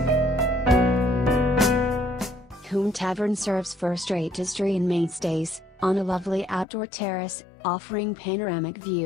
Hulm Tavern serves first-rate history and mainstays, on a lovely outdoor terrace, offering panoramic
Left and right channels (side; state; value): right; drops out; at 6.7 s